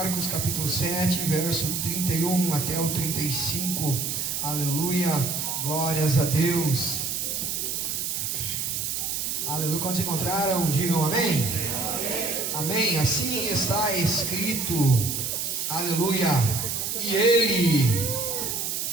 capítulo 7, verso 31 até o 35. Aleluia, glórias a Deus. Aleluia, quando se encontraram, digam amém. Amém, assim está escrito. Aleluia, e ele,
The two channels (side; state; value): right; noise; hiss, 2 dB below the sound